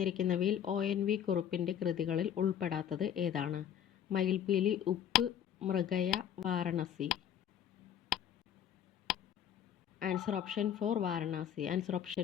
ONV കുറുപ്പിൻ്റെ കൃതികളിൽ ഉൾപ്പെടാത്തത് ഏതാണ്? മയിൽപീലി, ഉപ്പ്, മൃഗയ, Varanasi. Answer option 4 Varanasi. Answer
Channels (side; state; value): right; quieter; 9.5 dB